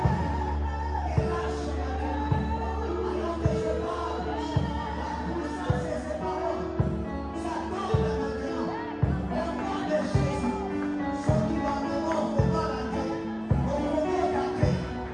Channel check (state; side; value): identical; both; correlation 1.00